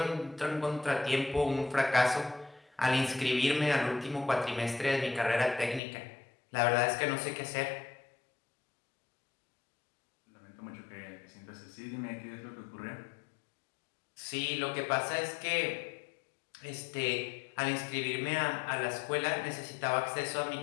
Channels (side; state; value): right; drops out; at 5.8 s